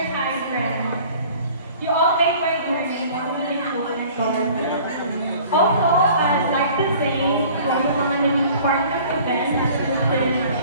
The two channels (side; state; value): both; inverted; correlation -0.49